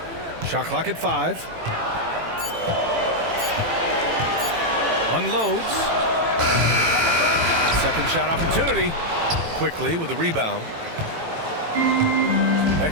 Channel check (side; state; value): left; late; 18 ms